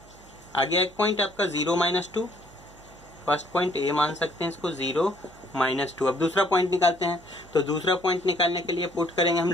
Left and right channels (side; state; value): right; noise; hum, 23 dB below the sound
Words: आ गया एक पॉइंट आपका 0 -2। फर्स्ट पॉइंट ए मान सकते हैं इसको, 0 -2। अब दूसरा पॉइंट निकालते हैं। तो दूसरा पॉइंट निकालने के लिए पुट करेंगे हम